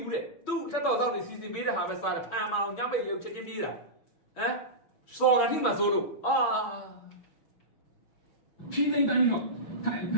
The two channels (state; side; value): late; right; 6.2 ms